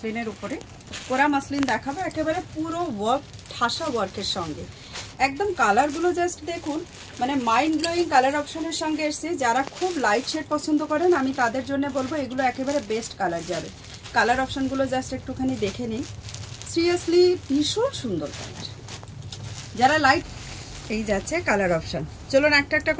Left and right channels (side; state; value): both; identical; correlation 1.00